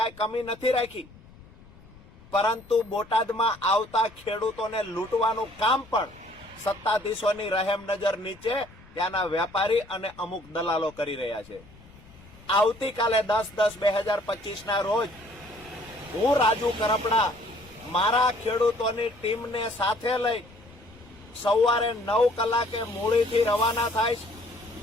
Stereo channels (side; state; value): left; noise; rumble, 23 dB below the sound